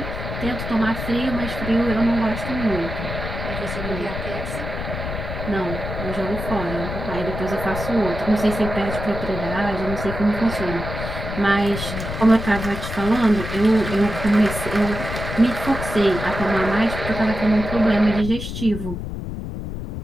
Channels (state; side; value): noise; left; rumble, 6 dB below the sound